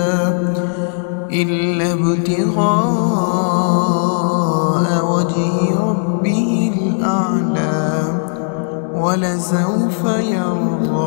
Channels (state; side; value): silent; right; digital silence